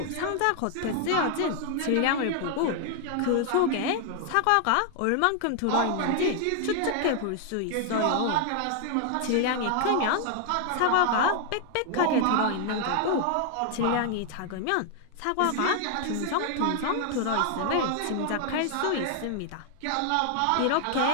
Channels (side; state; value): both; different; correlation 0.00